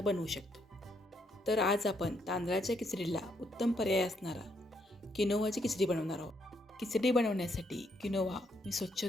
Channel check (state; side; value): normal; both; correlation 0.75